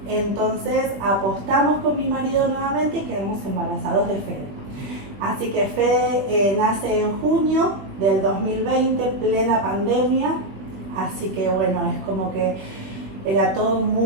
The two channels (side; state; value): left; late; 20 ms